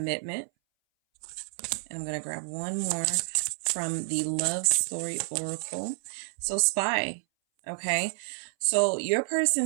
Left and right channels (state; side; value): silent; left; 58 dB below the other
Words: And I'm going to grab one more from the Love Story Oracle. So Spy. Okay, so your